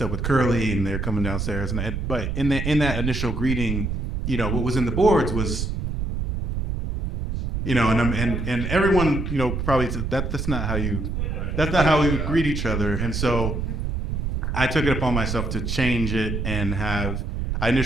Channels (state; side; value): noise; right; rumble, 2 dB below the sound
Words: up with Curly, and they're coming downstairs, but in that initial greeting, you know, what was in the boards was, you know, and everyone, you know, probably said that's not how we would greet each other. And so I took it upon myself to change it and I